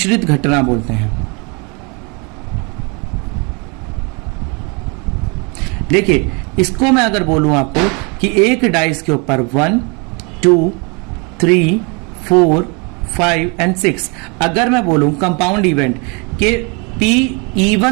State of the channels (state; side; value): quieter; left; 31.7 dB